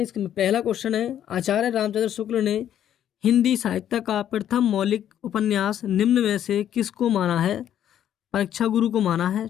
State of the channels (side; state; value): right; quieter; 10.5 dB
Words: इसका पहला क्वेश्चन है, आचार्य रामचंद्र शुक्ल ने हिंदी साहित्य का प्रथम मौलिक उपन्यास निम्न में से किसको माना है? परीक्षा गुरु को माना है।